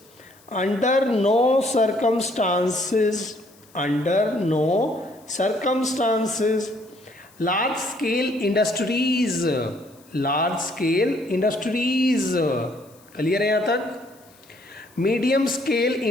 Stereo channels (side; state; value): left; noise; hiss, 28 dB below the sound